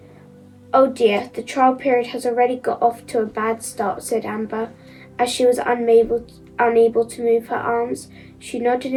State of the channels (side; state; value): both; identical; correlation 1.00